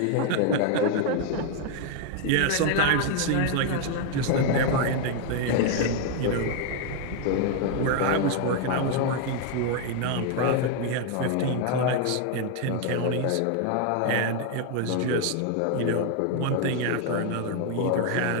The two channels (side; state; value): both; different; correlation 0.01